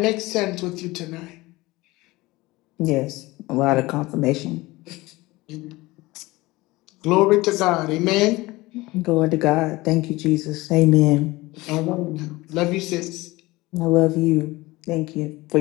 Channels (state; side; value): quieter; right; 20.6 dB